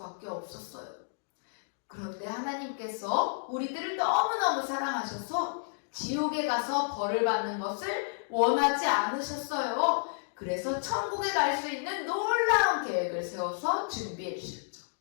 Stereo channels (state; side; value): silent; right; digital silence